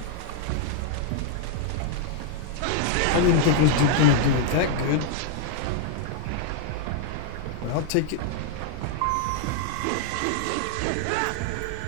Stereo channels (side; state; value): both; different; correlation 0.00